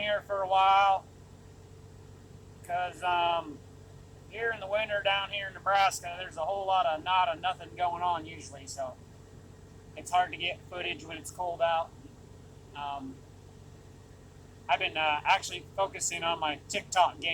for a while because here in the winter down here in Nebraska, there's a whole lot of nothing going on usually, so it's hard to get footage when it's cold out. Um, I've been actually focusing on my TikTok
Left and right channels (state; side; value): identical; both; correlation 1.00